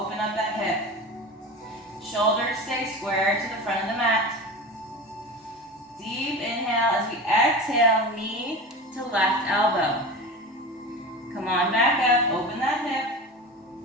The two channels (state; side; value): normal; both; correlation 0.30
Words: up that hip. Shoulders stay square to the front of the mat. Deep inhale as we exhale, knee to left elbow. Come on back up, open that hip.